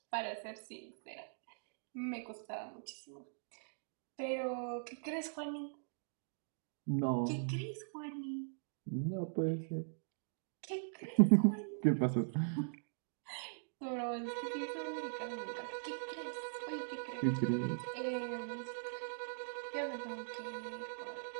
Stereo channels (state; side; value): silent; left; digital silence